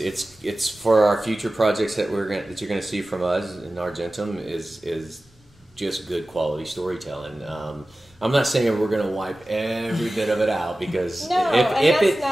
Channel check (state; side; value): normal; both; correlation 0.96